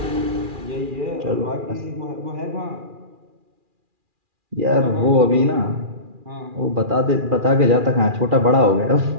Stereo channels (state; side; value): late; left; 2.4 ms